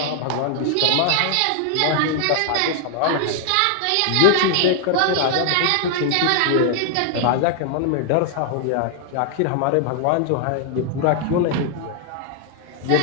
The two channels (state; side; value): different; both; correlation 0.00